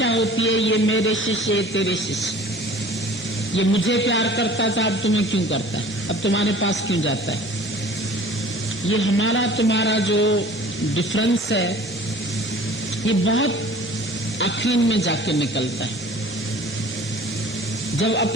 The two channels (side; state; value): both; normal; correlation 0.46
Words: होती है, ये मेरे शिष्य, ये तेरे शिष्य, ये मुझे प्यार करता था, अब तुम्हें क्यों करता है, अब तुम्हारे पास क्यों जाता है। ये हमारा तुम्हारा जो डिफरेंस है, ये बहुत आखिर में जाके निकलता है, जब